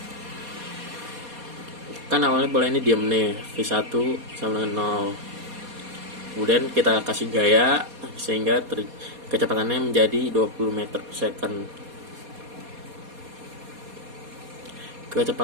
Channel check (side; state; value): left; late; 4.2 ms